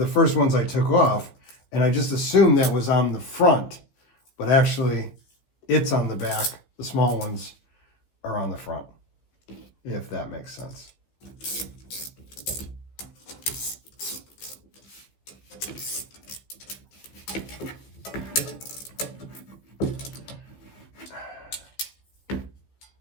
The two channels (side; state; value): right; late; 15 ms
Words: first ones I took off, and I just assumed that was on the front, but actually it's on the back. The small ones are on the front, if that makes sense.